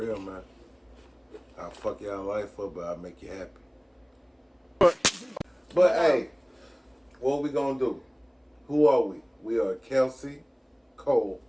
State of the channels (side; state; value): both; identical; correlation 1.00